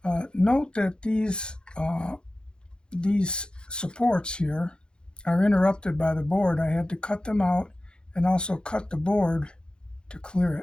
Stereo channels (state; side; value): late; right; 0.049 ms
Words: Note that these supports here are interrupted by the board. I had to cut them out and also cut the board to clear